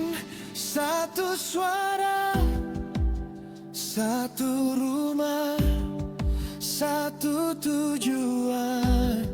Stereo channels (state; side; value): identical; both; correlation 1.00